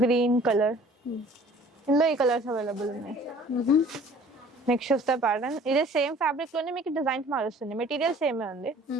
green colour, ఇందులో ఈ కలర్స్ అవైలబుల్ ఉన్నాయి. నెక్స్ట్ వస్తే ప్యాటర్న్ ఇదే సేమ్ ఫ్యాబ్రిక్ లోనే మీకు డిజైన్స్ మారుస్తుంది, మెటీరియల్ సేమే ఉంది.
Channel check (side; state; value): both; normal; correlation 0.51